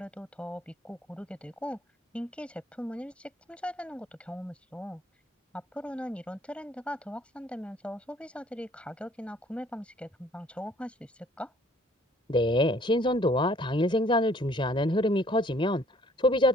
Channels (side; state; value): both; normal; correlation 0.59